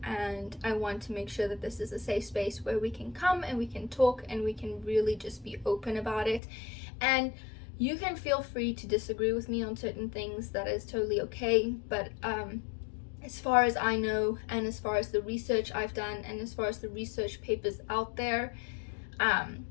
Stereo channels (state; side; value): drops out; right; at 6.4 s